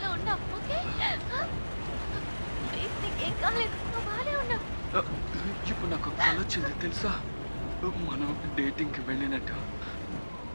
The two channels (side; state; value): both; inverted; correlation -1.00